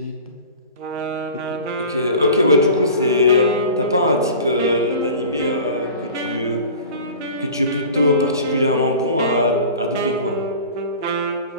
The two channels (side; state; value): both; inverted; correlation -0.39